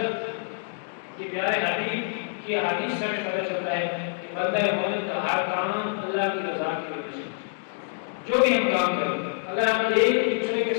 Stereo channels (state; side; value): silent; right; digital silence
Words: کے پیارے حبیب کی حدیث سے ہمیں پتہ چلتا ہے کہ بندہ مومن کا ہر کام اللہ کی رضا کی وجہ سے، جو بھی ہم کام کریں، اگر ہم ایک دوسرے کے